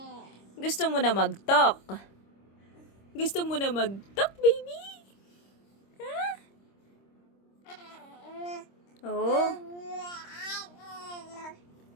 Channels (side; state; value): right; late; 26 ms